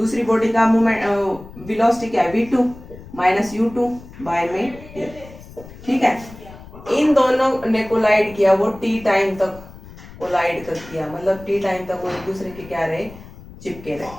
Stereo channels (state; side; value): noise; left; rumble, 18 dB below the sound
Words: बॉडी का मूवमेंट वेलोसिटी क्या है, V2 माइनस U2 बाय में T, ठीक है। इन दोनों ने कोलाइड किया, वो T टाइम तक कोलाइड कर किया, मतलब T टाइम तक वो एक दूसरे के क्या रहे, चिपके रहे,